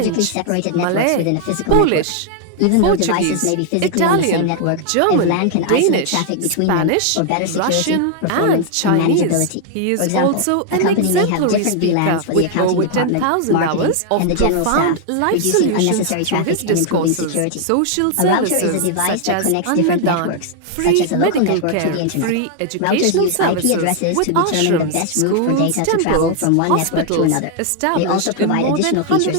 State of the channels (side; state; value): both; different; correlation 0.00